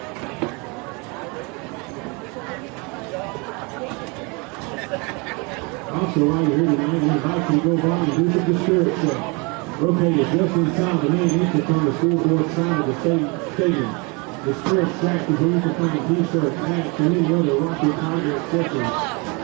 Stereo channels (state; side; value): quieter; left; 29.6 dB